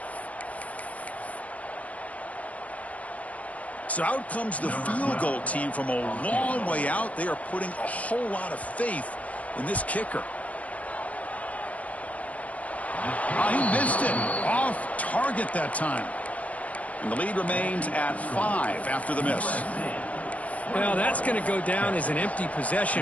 So out comes the field goal team from a long way out. They are putting a whole lot of faith in this kicker. He missed it. Off target that time. And the lead remains at 5 after the miss. Well, that's going to go down as an empty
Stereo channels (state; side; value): late; right; 0.068 ms